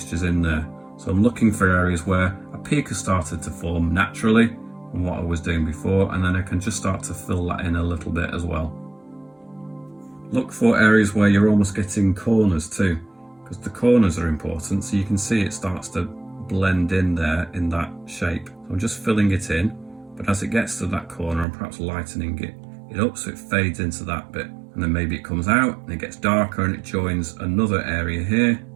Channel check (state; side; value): drops out; left; at 21.5 s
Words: in there. So I'm looking for areas where a peak has started to form naturally from what I was doing before, and then I can just start to fill that in a little bit as well. Look for areas where you're almost getting corners too, because the corners are important, so you can see it starts to blend in there in that shape. So I'm just filling it in, but as it gets to that corner, I'm perhaps lightening it up so it fades into that bit, and then maybe it comes out and it gets darker and it joins another area here.